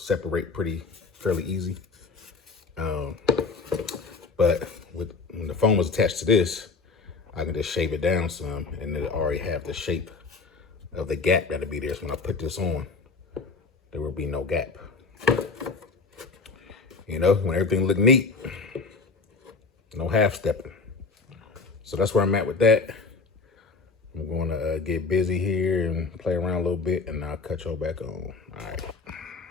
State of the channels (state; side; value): quieter; right; 4.3 dB